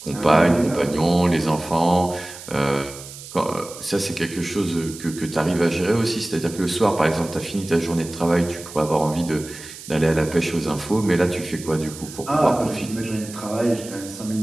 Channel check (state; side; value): noise; right; hiss, 14 dB below the sound